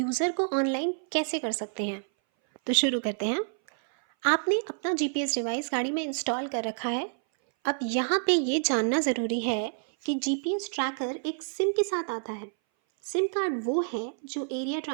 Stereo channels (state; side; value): silent; left; 58 dB below the other